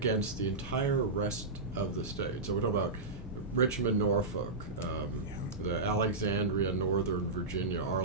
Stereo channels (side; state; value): left; quieter; 3.5 dB